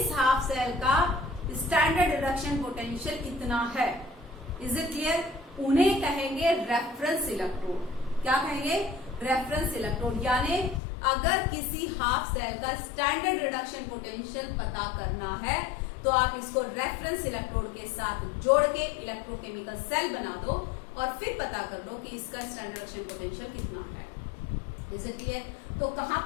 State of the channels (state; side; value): drops out; right; at 10.8 s